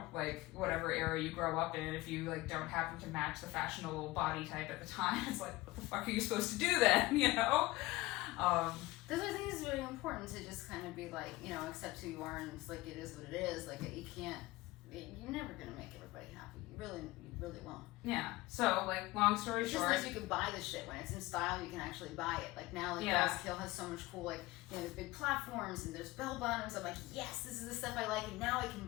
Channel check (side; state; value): right; quieter; 20.0 dB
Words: Like whatever era you grow up in, if you like don't happen to match the fashionable body type at the time, it's like, what the fuck are you supposed to do then? That's why I think it's really important to just kind of be like, accept who you are, and it's like, it is what it is. Like, you're never gonna make everybody happy. You really won't. Yeah. So, like, long story short. It's just like you can buy the shit when it's in style. You can actually buy it. Like now, like Yeah. Bell's Kill has so much cool, like there's big platforms and there's bell bottoms. I'm like, yes, this is the stuff I like, and now I can